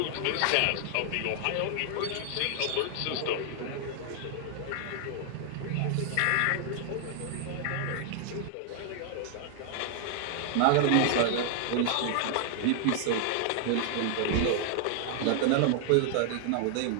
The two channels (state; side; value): different; both; correlation 0.00